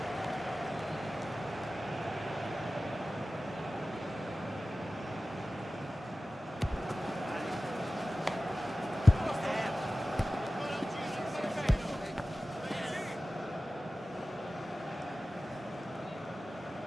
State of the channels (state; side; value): normal; both; correlation 0.96